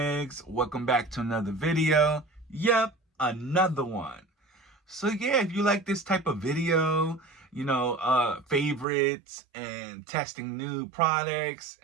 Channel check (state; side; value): drops out; left; at 8.8 s